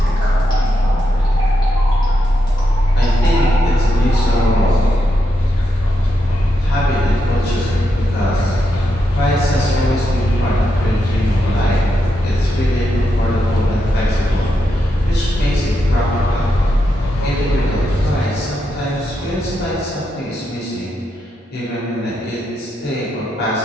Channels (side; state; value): both; normal; correlation 0.83